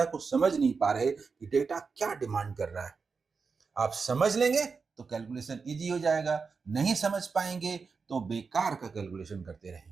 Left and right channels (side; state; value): left; quieter; 5.0 dB